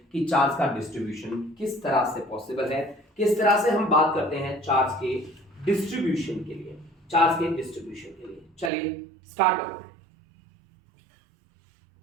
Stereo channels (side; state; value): left; drops out; at 8.7 s